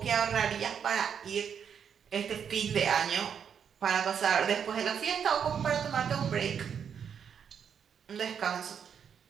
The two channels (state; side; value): quieter; left; 7.6 dB